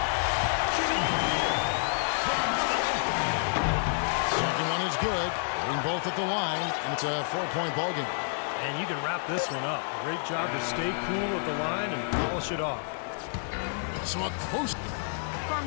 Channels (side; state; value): right; silent; digital silence